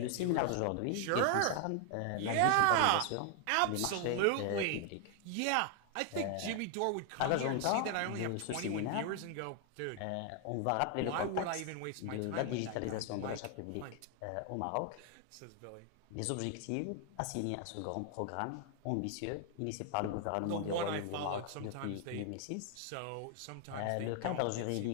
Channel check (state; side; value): different; both; correlation 0.00